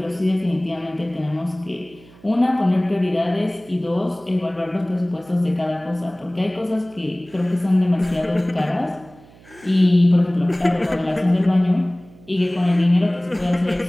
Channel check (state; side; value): noise; right; hum, 25 dB below the sound